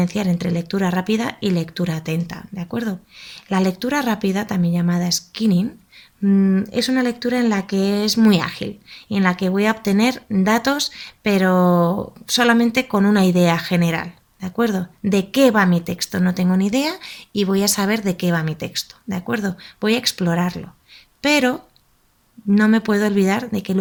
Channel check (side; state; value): both; identical; correlation 1.00